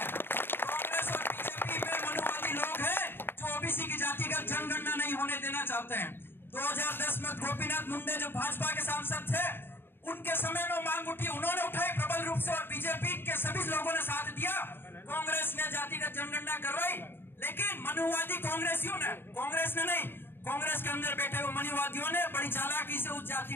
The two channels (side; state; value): right; late; 0.10 ms